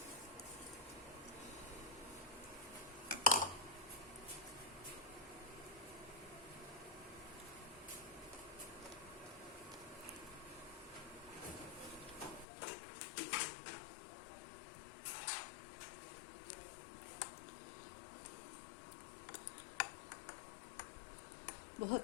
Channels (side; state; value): right; drops out; at 12.5 s